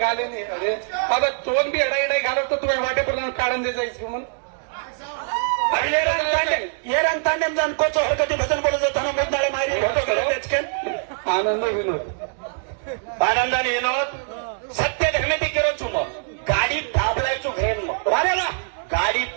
गाले नहीं अरे आता तोन भी अडाई घालत तो तुम्हें वाटे पर काढून दे जायचं म्हणून येरण तांडेम जाण कोच होतं ते भजन बोलत होताना मुद्दाळे मारी होतो तेचकेन आनंद विनोद आनंदाने विनोद सत्य धर्मेती केलो चुम गाडी दाबलायचो घरेन मग वारे वा गाडी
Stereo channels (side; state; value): left; silent; 61 dB below the other